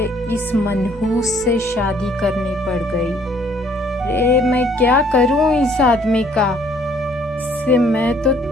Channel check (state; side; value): normal; both; correlation 0.62